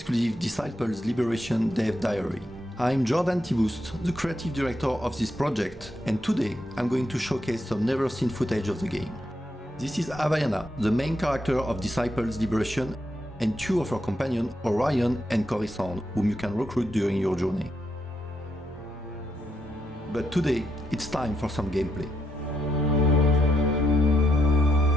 Disciples Liberation Dev Diary. I'm Jordan Tibust, the creative director of this project, and today I'm going to showcase some never-seen footage of the game. This is Havaiana, the main character of Disciples Liberation, and two of her companions, Orion and Coruscant, whom you can recruit during your journey. But today, it's time for some gameplay.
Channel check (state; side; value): normal; both; correlation 0.80